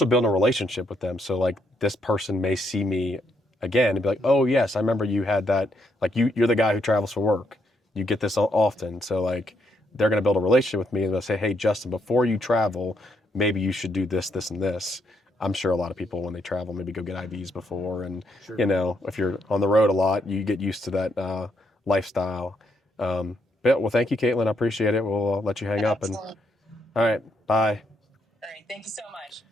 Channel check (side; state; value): both; normal; correlation 0.76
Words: building a relationship with them. So this person may see me again and be like, oh yes, I remember you had that. You're the guy who travels for work. You get this often. So they're going to build a relationship with me and they'll say, hey, Justin, before you travel, maybe you should do this, this, and this. I'm sure a lot of people when they travel maybe go get IVs before. And, if you're on the road a lot, you get used to that lifestyle. Well, thank you, Caitlin. I appreciate it. We'll let you hang up. And all right, bye. All right. Thank you so much.